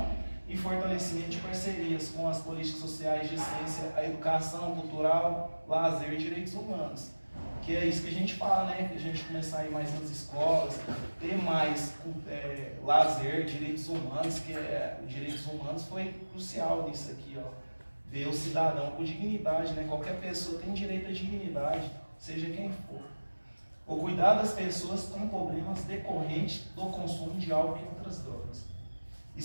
e fortalecimento de parcerias com as políticas sociais de ciência, a educação cultural, lazer e direitos humanos. Que é isso que a gente fala, né? Que a gente começar a ir mais nas escolas, ter mais lazer, direitos humanos, que direitos humanos foi crucial nisso aqui, ó. Ver o cidadão com dignidade, né? Qualquer pessoa tem direito à dignidade, seja quem for. O cuidar das pessoas com problemas decorrentes do consumo de álcool e outras drogas.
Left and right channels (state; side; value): inverted; both; correlation -1.00